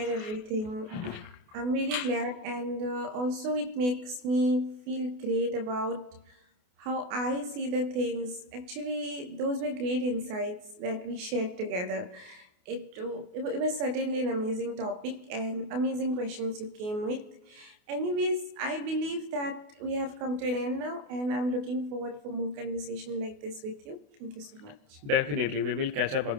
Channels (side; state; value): left; late; 28 ms